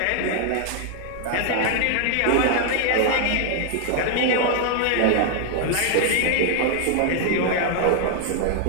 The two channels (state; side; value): different; both; correlation 0.00